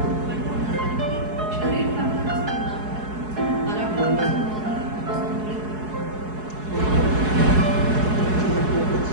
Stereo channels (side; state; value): left; late; 4.7 ms